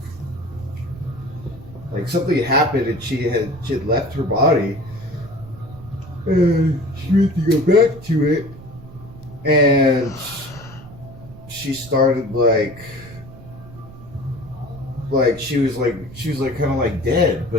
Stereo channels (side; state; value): right; noise; rumble, 17 dB below the sound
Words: like something had happened and she had left her body and she went to go back to it and she started like she was kind of like dead,